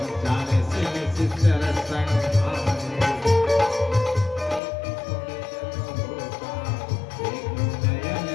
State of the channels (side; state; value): right; drops out; at 4.6 s